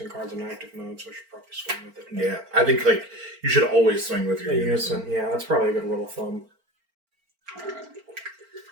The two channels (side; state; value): left; late; 4.4 ms